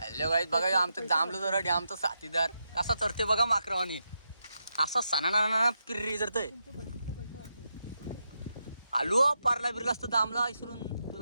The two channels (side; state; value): both; inverted; correlation -0.85